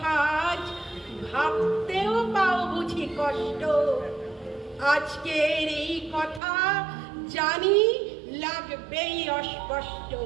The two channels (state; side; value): drops out; left; at 6.4 s